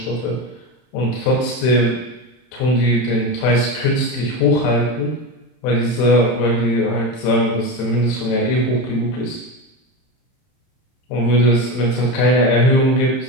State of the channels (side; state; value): right; late; 31 ms